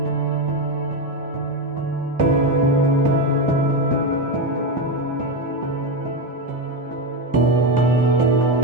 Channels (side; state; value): both; normal; correlation 0.11